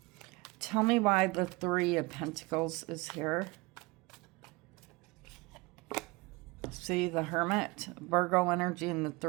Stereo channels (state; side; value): quieter; left; 24.8 dB